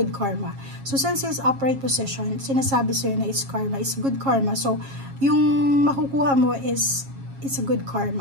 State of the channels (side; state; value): left; late; 7.3 ms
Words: karma. So, since it's upright position, sinasabi sa'yo na it's karma. It's good karma. So, yung makukuha mo is, it's a good